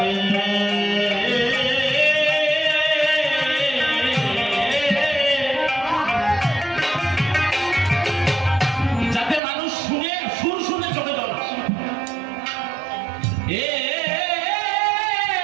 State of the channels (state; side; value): drops out; left; at 9.4 s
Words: যাতে মানুষ শুনে সুর শুনে চোখে জল আসে। এ